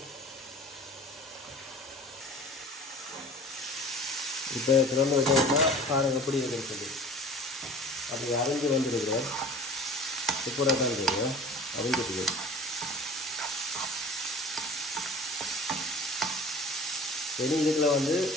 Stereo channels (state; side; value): normal; both; correlation 0.43